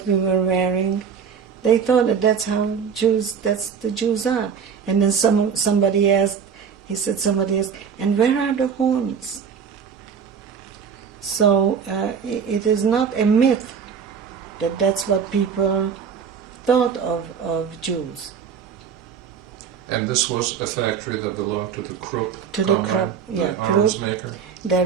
we were wearing. They thought that that's the Jews are. And then somebody asked, and where are the horns? So it is not a myth that that's what people thought of Jews. And this was a factory that belonged to the Krupp Krupp. arms maker? There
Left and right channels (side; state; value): left; quieter; 6.8 dB